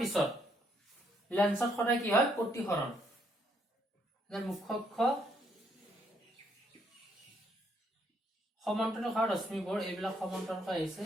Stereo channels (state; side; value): normal; both; correlation 0.71